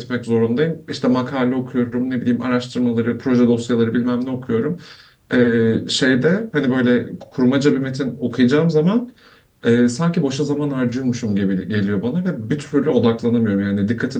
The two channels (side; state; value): both; identical; correlation 1.00